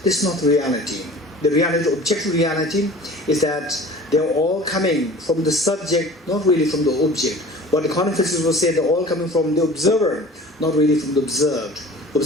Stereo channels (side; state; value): both; normal; correlation 0.43